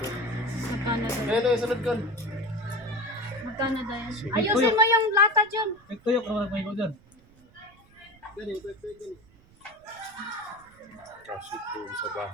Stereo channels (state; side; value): noise; right; rumble, 27 dB below the sound